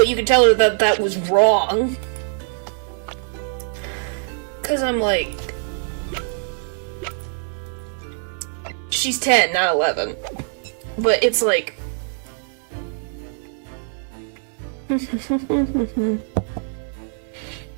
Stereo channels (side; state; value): left; silent; digital silence